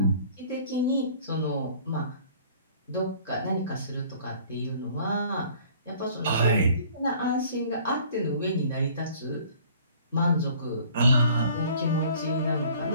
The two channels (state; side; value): inverted; both; correlation -0.53